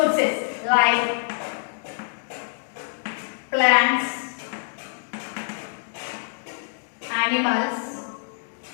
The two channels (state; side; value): silent; right; digital silence